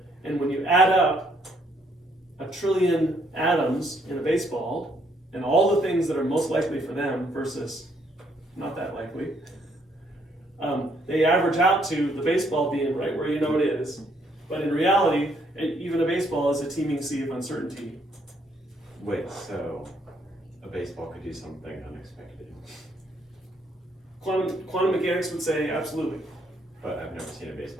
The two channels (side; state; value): both; normal; correlation 0.69